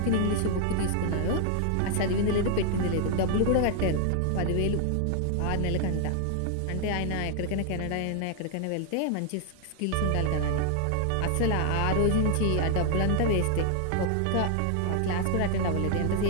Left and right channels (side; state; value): both; different; correlation 0.00